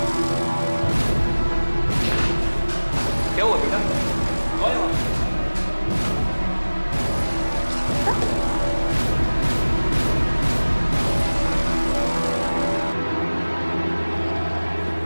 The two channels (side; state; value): both; inverted; correlation -1.00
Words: क्या हुआ बेटा? कौन है वहाँ?